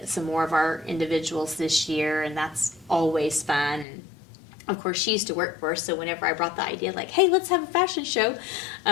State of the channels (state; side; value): drops out; right; at 3.9 s